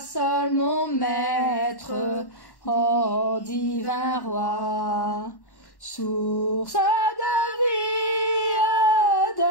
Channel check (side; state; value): right; late; 1.1 ms